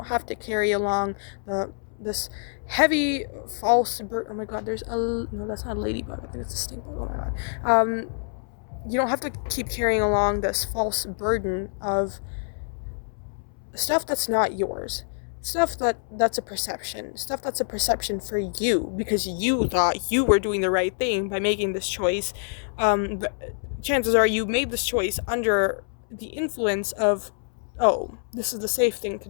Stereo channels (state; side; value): silent; right; 61 dB below the other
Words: have to carry along this heavy false oh my god, no, that's not a ladybug, I think it's a stink bug. Oh my god. You don't have to keep carrying along this false burden of stuff that's not yours, stuff that's a perception for you, because you thought you were doing the right thing by making this choice. But chances are you made this choice under the influence of, oh, this is the safe thing to